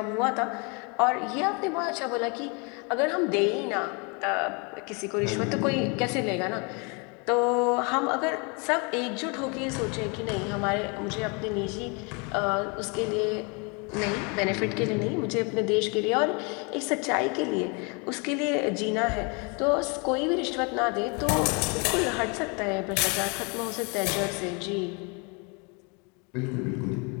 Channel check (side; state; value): right; quieter; 32.2 dB